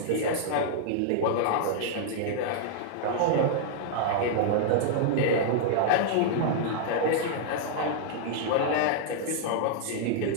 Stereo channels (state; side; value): different; both; correlation -0.01